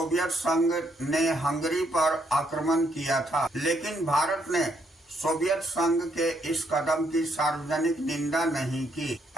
संघ ने हंगरी पर आक्रमण किया था, लेकिन भारत ने सोवियत संघ के इस कदम की सार्वजनिक निंदा नहीं की।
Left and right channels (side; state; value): both; normal; correlation 0.73